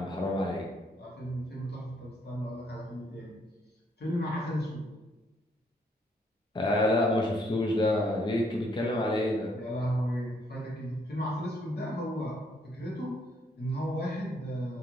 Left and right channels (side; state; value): both; normal; correlation 0.69